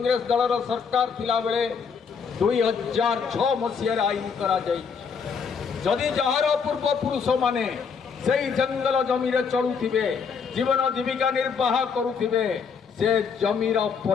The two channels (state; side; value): quieter; right; 6.0 dB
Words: दलर सरकार थिला बेले 2006 मसीह आईन करा जदि जार पूर्वपुरुष माने से जंगल जमी चलुथिबे जीवन जीविका निर्वाह करुथिबे से जमीर